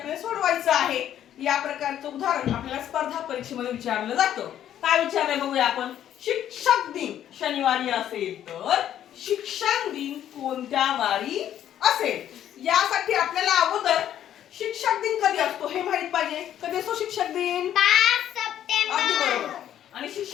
सोडवायचं आहे. या प्रकारचं उदाहरण आपल्याला स्पर्धा परीक्षेमध्ये विचारलं जातं. काय विचारलंय बघूया आपण. शिक्षक दिन शनिवारी असेल तर शिक्षण दिन कोणत्या वारी असेल? यासाठी आपल्याला अगोदर शिक्षक दिन कधी असतो हे माहित पाहिजे. कधी असतो शिक्षक दिन? 5 सप्टेंबर. अगदी बरोबर. आणि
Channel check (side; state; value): right; quieter; 10.9 dB